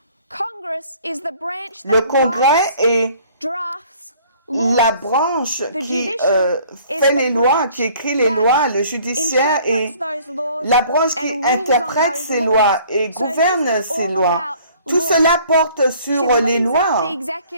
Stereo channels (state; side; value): inverted; both; correlation -0.55